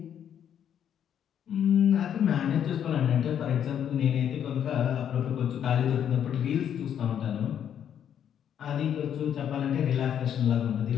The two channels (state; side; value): quieter; right; 9.2 dB